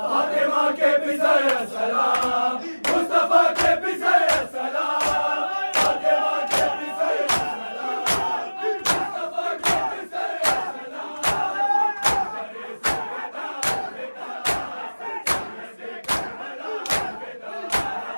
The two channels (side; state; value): both; inverted; correlation -1.00